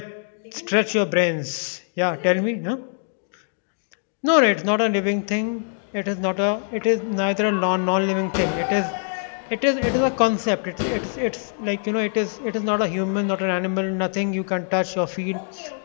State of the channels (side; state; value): right; silent; 63 dB below the other